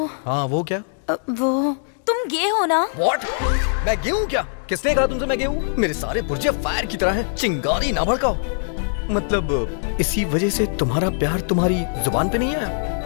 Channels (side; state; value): right; silent; digital silence